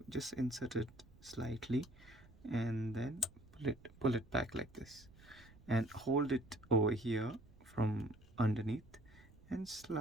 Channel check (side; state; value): right; noise; rumble, 23 dB below the sound